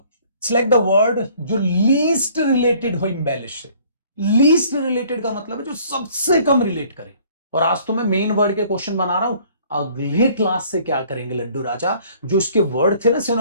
सिलेक्ट द वर्ड जो लीस्ट रिलेटेड हो इम्बेलिश से। लीस्ट रिलेटेड का मतलब है जो सबसे कम रिलेट करे। और आज तो मैं मेन वर्ड के क्वेश्चन बना रहा हूं, अगले क्लास से क्या करेंगे लड्डू राजा, जो इसके वर्ड थे ना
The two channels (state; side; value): inverted; both; correlation -0.57